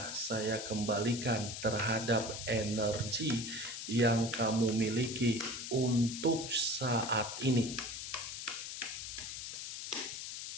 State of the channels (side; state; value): left; noise; hiss, 7 dB below the sound